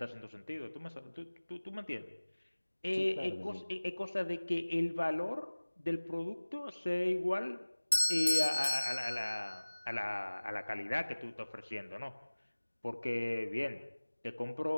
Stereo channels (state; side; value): inverted; both; correlation -1.00